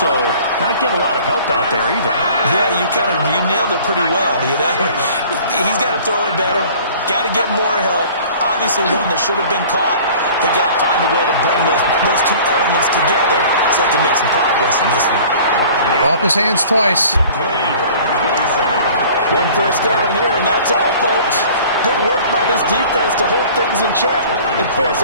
not getting a lot of help out there either. Yeah, you nailed it pretty well, you know. He's got to throw it better. Got to get more help. Obviously one that should have been caught. They got to find a way to bring those 2 elements together so they can make some progress in this one. Off his hands twice. One first down here, and that's all, folks. Good work by this defense to hold things in check and force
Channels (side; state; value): both; inverted; correlation -0.47